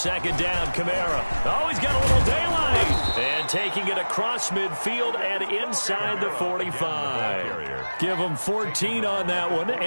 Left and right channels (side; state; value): both; inverted; correlation -1.00